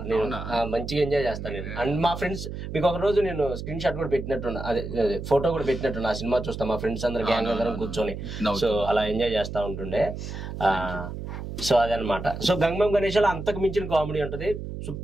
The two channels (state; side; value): noise; right; hum, 7 dB below the sound